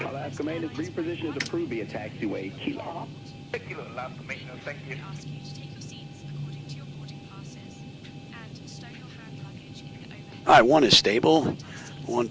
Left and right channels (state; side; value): identical; both; correlation 1.00